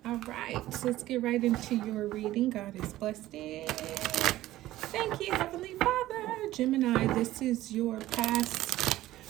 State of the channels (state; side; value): quieter; left; 15.4 dB